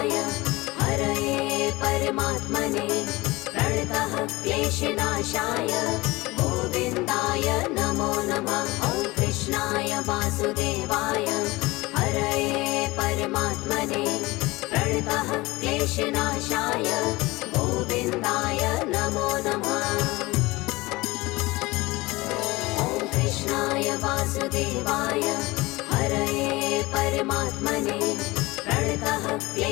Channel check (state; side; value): quieter; right; 21.4 dB